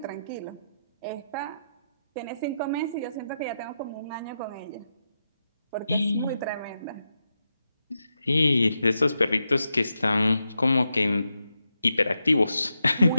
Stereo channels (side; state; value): both; inverted; correlation -0.86